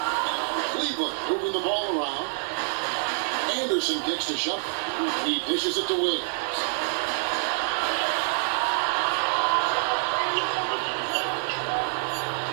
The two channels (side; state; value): left; silent; 57 dB below the other